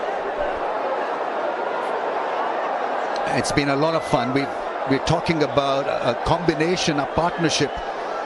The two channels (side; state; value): both; identical; correlation 1.00